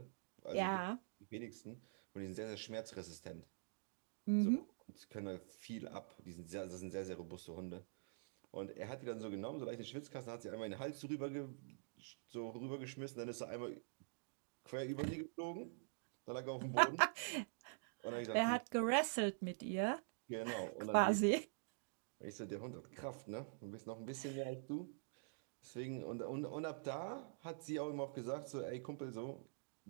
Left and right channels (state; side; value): silent; left; digital silence